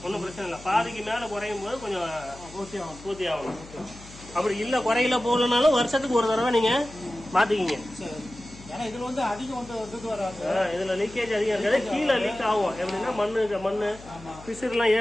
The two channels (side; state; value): left; noise; hum, 19 dB below the sound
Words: ஒன்றும் பிரச்சனை இல்லை. பாதிக்கு மேல குறையும் போது கொஞ்சம் பூர்த்தி ஆகணும். அப்படி இல்லை குறையில போகலனாலும் வருஷத்துக்கு ஒரு தடவை நீங்க மாத்திக்கிங்க. இதுல வந்து அதிகம் இதுல லீக்கேஜ் அதிகம் இருக்காது. கீழே லீக் ஆகும். எப்படின்னா மண்ணு பிசுறுலாம்